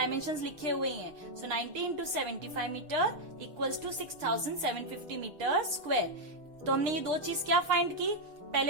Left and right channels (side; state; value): left; late; 6.3 ms